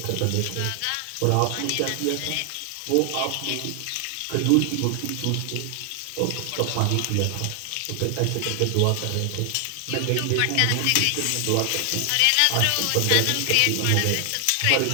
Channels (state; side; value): different; both; correlation 0.00